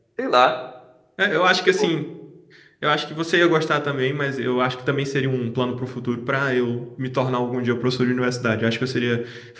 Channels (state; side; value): identical; both; correlation 1.00